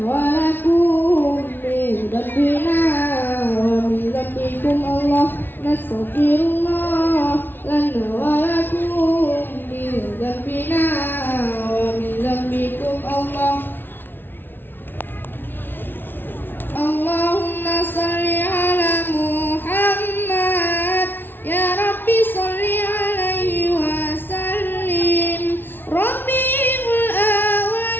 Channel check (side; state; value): right; late; 0.099 ms